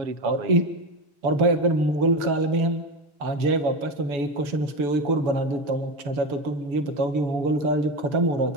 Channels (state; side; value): late; left; 7.0 ms